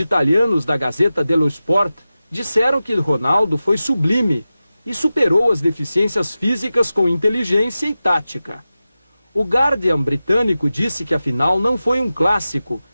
da Gazzetta dello Sport disseram que Ronaldo foi sublime e superou as deficiências físicas com inteligência e tática. O Guardian britânico disse que a final não foi um clássico,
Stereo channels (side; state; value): both; inverted; correlation -0.94